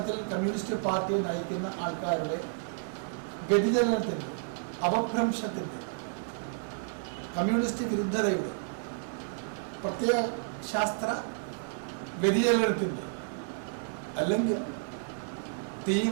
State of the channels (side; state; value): left; silent; 57 dB below the other